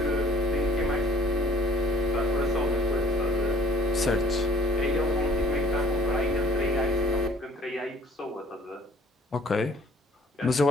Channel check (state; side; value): normal; both; correlation 0.55